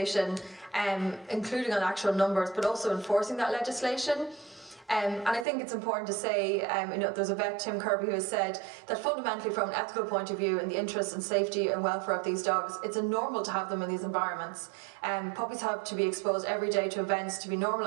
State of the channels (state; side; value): drops out; left; at 5.5 s